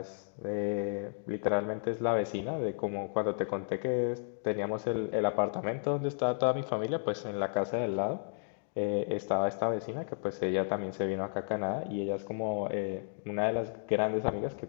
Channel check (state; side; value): silent; right; digital silence